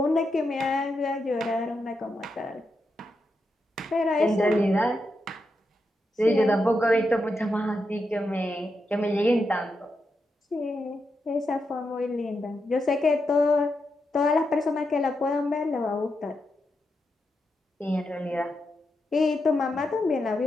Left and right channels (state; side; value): normal; both; correlation 0.85